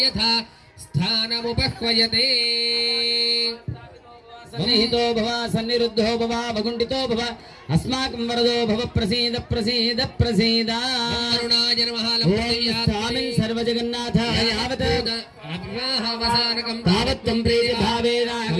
यथा स्थानमुपह्वयते सन्निहितो भव सन्निरुद्धो भव वकुण्ठितो भव अस्माकं वरदो भव प्रसीद प्रसीद प्रसीद करुणाय नमः स्वामिन् सर्वजगन्नाथाय यावत् अग्राहवसानकं तावत् त्वं प्रीतिभावेन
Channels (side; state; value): both; identical; correlation 1.00